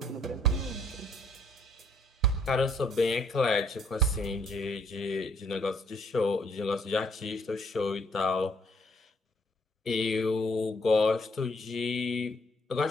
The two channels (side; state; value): both; normal; correlation 0.66